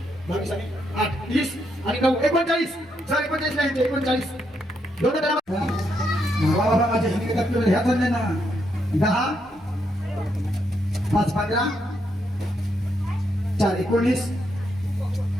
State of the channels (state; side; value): normal; both; correlation 0.78